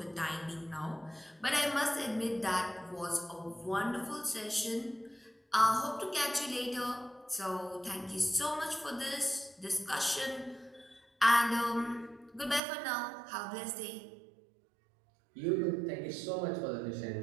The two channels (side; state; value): left; drops out; at 12.6 s